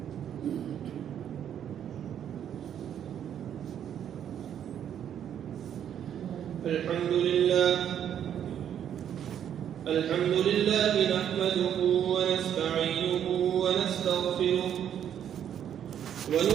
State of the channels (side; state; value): left; quieter; 9.5 dB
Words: الحمد لله نحمده ونستعينه ونستغفره